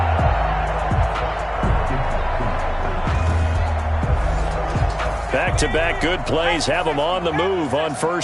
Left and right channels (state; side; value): identical; both; correlation 1.00